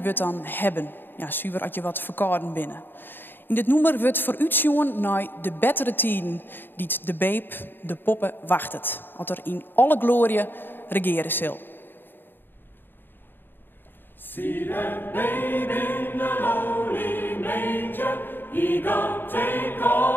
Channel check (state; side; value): late; right; 0.096 ms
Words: wordt dan hebben. Ja, zuiver als je wat verkouden binnen. In dit nummer wordt vooruitzien naar de betere tijden die de babe, de poppen, wachtet. Wat er in alle glorie regeren zal. See that babe in the lowly manger, he gon' take